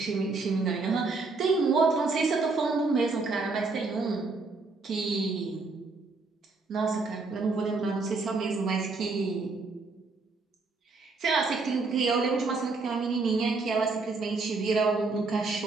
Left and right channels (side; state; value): left; quieter; 3.9 dB